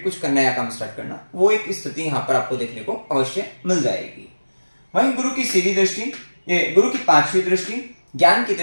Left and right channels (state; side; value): inverted; both; correlation -1.00